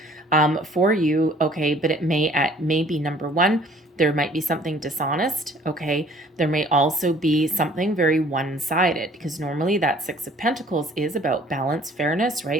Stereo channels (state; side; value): normal; both; correlation 0.55